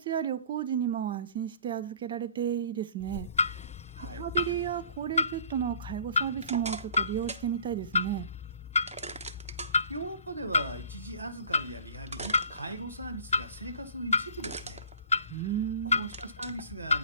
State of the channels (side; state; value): both; inverted; correlation -0.51